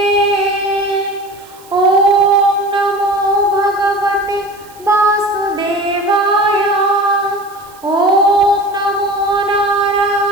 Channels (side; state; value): right; noise; hiss, 25 dB below the sound